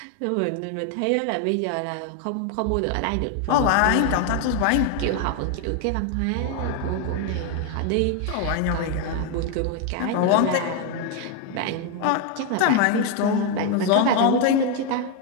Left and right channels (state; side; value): different; both; correlation 0.01